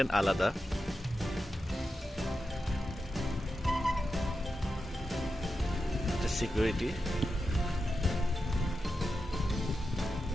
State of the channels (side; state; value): both; normal; correlation 0.89